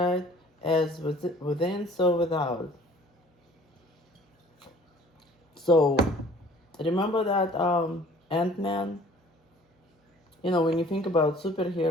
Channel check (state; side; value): normal; both; correlation 0.52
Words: As within, so without. So, remember that Ant-Man? When you think about